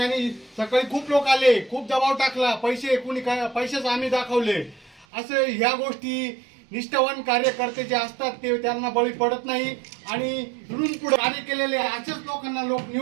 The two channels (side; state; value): left; drops out; at 5.1 s